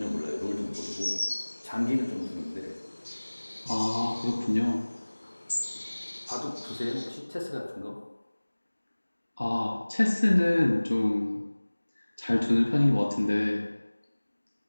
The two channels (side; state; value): both; inverted; correlation -1.00